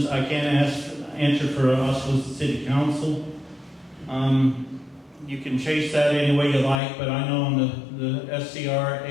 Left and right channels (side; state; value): right; drops out; at 6.8 s